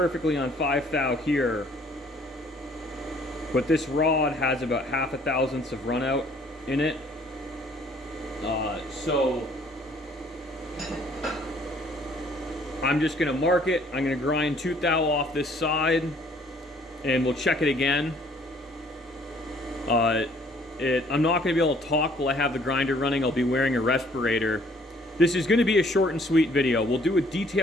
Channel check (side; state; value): both; normal; correlation 0.60